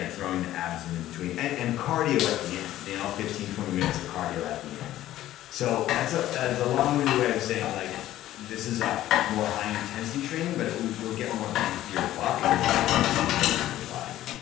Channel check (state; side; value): quieter; right; 13.9 dB